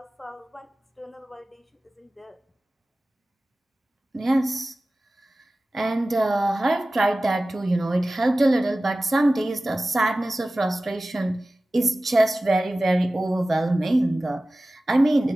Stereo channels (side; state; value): both; normal; correlation 0.97